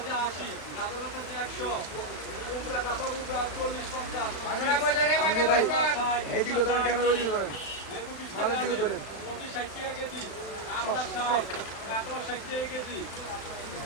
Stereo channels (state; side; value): late; right; 36 ms